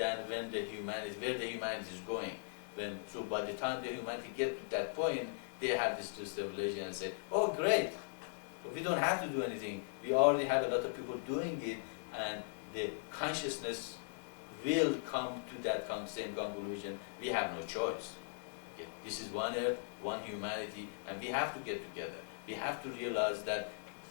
where the humanity is going. So by the time the humanity get to that point, they have this revelation and say, oh great, we don't have to do anything. We already have a lot of people doing it, and the consciousness will come to that same conclusion. We have no choice. Okay. This is one earth, one humanity, and we have to get together. We have to realize that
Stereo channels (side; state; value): right; silent; 52 dB below the other